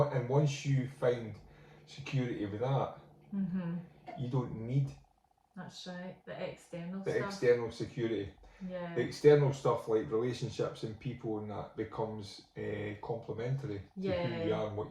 once you find security with that, you don't need. That's right. The external stuff. The external security. Yeah. The external stuff like relationships and people and that becomes complementary to who you are and what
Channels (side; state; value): both; identical; correlation 1.00